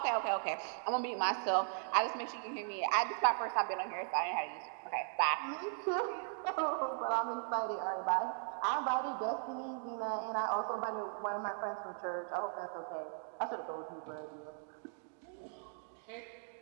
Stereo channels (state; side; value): silent; left; 52 dB below the other